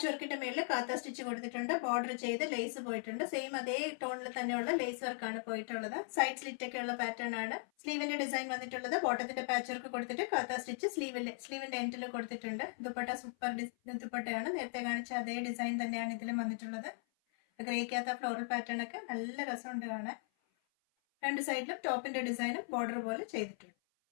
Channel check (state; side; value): silent; right; 52 dB below the other